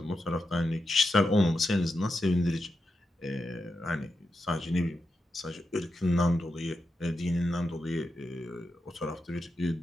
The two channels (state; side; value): normal; both; correlation 0.88